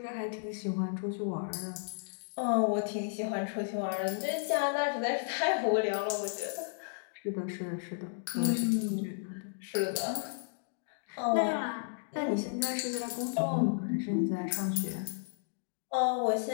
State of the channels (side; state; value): right; silent; digital silence